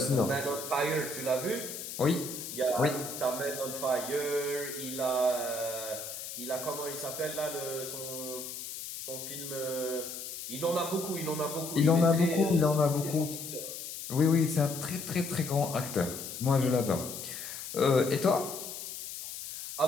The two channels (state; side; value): noise; left; hiss, 8 dB below the sound